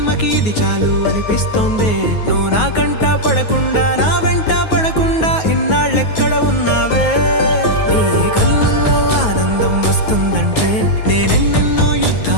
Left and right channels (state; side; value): late; right; 9.4 ms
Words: ఇది చాలు అనిపిస్తోందే. నువ్వు నా కంట పడకుండా నా వెంట పడకుండా ఇన్నాళ్ళెక్కడ ఉన్నావే. నీ కళ్ళల్లో ఆనందం వస్తుందంటే నేనెన్నెన్నో